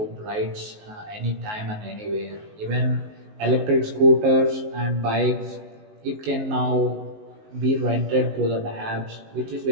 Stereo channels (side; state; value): left; late; 19 ms